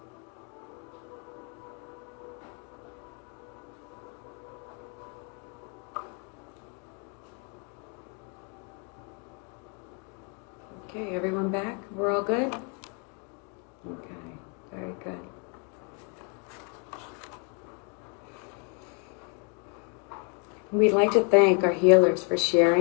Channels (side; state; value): right; quieter; 35.3 dB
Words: Okay, everyone back? We're all good? Okay, very good. We'd like to thank our healers for